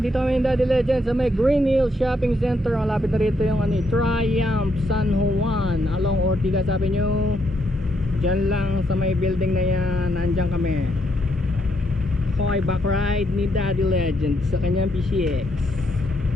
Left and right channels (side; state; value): both; normal; correlation 0.76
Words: dito kami yung Daddy Legend sa may Green Hill Shopping Center. Malapit na rito yung Triumph San Juan along Ortigas Avenue. Diyan lang sa may building na yan, nandyan kami. Okay, back ride ni Daddy Legend sa kanyang PCX